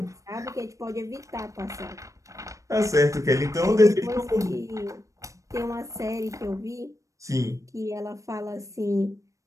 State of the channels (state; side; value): late; left; 0.16 ms